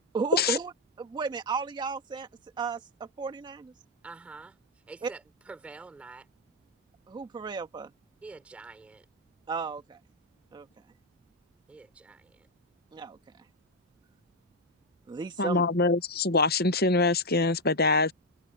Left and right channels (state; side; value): normal; both; correlation 0.02